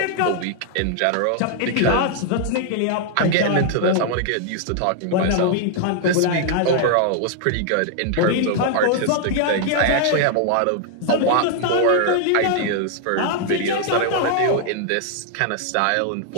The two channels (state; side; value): different; both; correlation 0.00